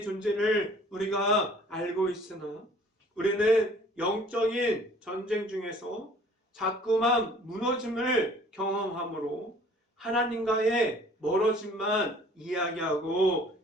존재를 우리가 알고 있으나 우리는 영적인 전쟁 중에서 자꾸만 무너짐을 경험함으로 하나님과의 멀어짐만 이야기하고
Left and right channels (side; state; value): both; normal; correlation 0.53